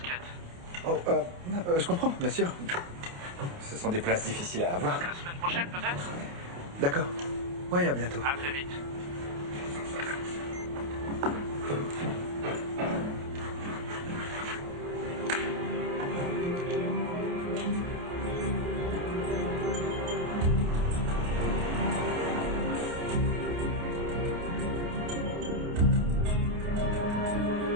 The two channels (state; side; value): late; left; 28 ms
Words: Oh, je comprends, bien sûr. Ce sont des places difficiles à avoir. La semaine prochaine, peut-être? D'accord. Oui, à bientôt. À très vite.